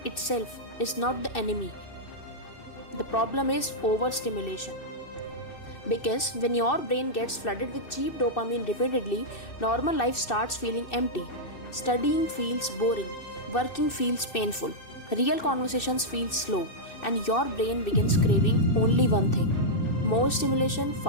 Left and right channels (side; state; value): right; late; 2.6 ms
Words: itself is not the enemy. The problem is overstimulation. Because when your brain gets flooded with cheap dopamine repeatedly, normal life starts feeling empty. Studying feels boring, working feels painful, real conversations feel slow, and your brain begins craving only one thing: more stimulation,